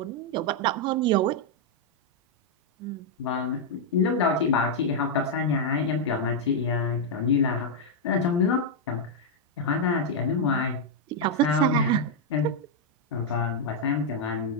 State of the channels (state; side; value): normal; both; correlation -0.03